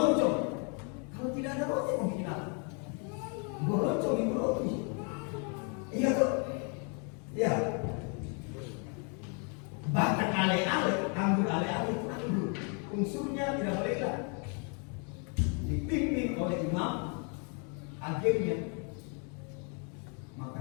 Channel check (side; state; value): right; quieter; 37.9 dB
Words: Kalau tidak ada roti mau bikin apa? Geroncong itu roti. Iya tuh. Ya. Bahkan ale-ale, anggur ale-ale itu anggur. Unsurnya tidak boleh hilang. Dipimpin oleh imam, agennya.